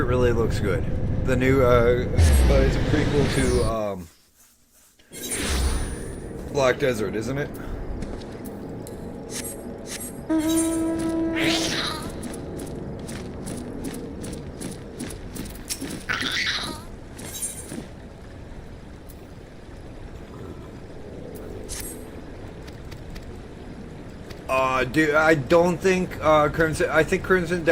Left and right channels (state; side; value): identical; both; correlation 1.00